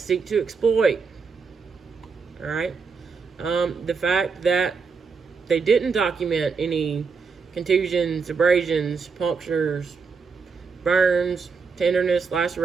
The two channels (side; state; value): left; quieter; 5.2 dB